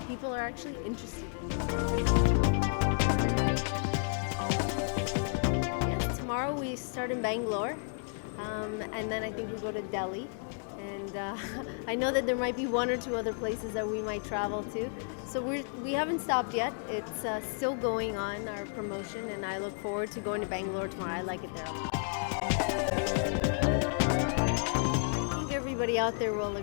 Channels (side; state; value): right; silent; 56 dB below the other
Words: people are actually interested in you. Yes, tomorrow we start in Bangalore. And then I think we go to Delhi. And I know that there might be one or two other places that we might travel to. So we haven't stopped yet. It's still going on, our promotion, and I look forward to going to Bangalore tomorrow. I like it there a lot. I think everybody out there will